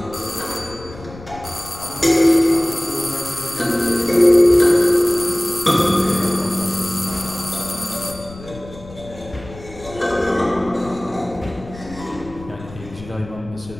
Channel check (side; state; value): left; noise; rumble, 17 dB below the sound